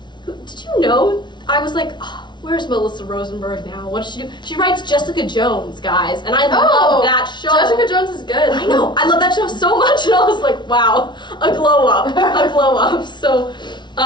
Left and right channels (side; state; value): right; late; 0.22 ms